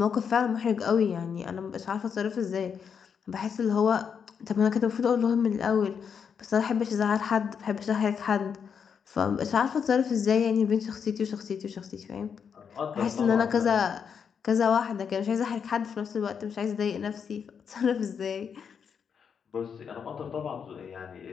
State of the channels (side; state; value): right; quieter; 6.9 dB